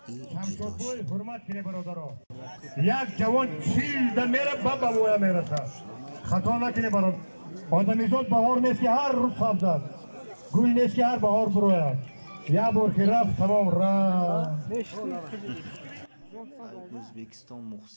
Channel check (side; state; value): both; inverted; correlation -1.00